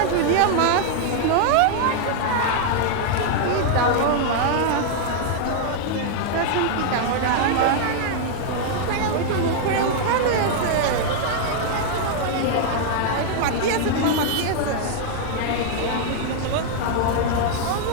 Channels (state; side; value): different; both; correlation 0.00